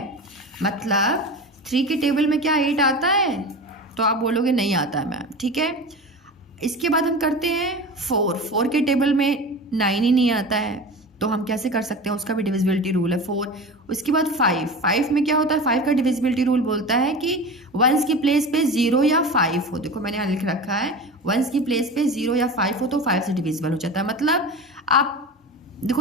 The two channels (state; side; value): normal; both; correlation 0.30